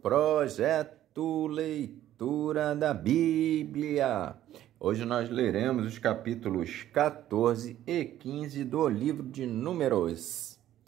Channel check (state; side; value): quieter; left; 12.6 dB